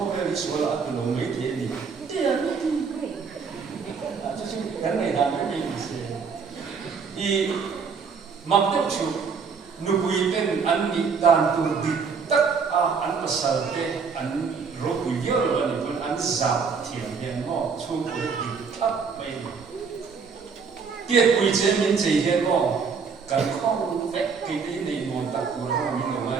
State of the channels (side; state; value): left; quieter; 5.6 dB